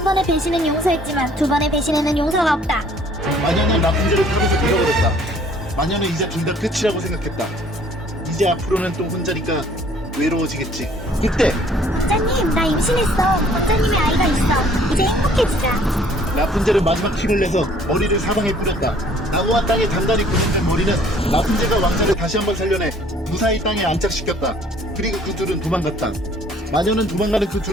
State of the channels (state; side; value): normal; both; correlation 0.57